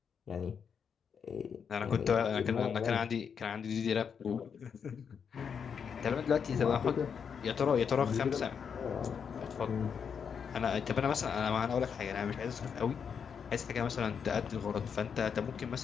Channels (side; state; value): right; quieter; 6.9 dB